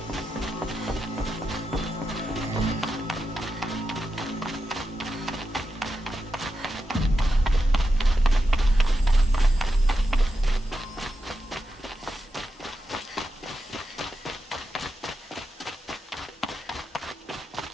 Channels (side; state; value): both; normal; correlation 0.88